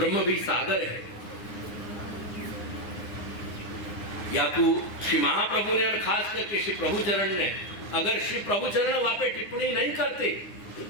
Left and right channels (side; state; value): right; late; 9.7 ms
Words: भी सागर है। याकू श्री महाप्रभु ने और खास करके श्री प्रभुचरण ने, अगर श्री प्रभुचरण वहां पे टिप्पणी नहीं करते